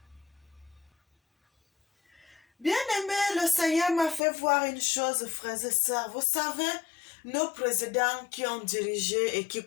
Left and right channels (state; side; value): drops out; right; at 4.2 s